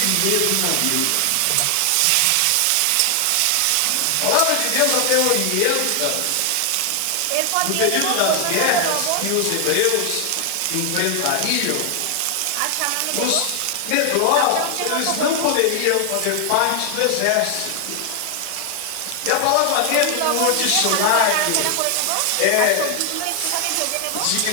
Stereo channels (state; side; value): different; both; correlation 0.00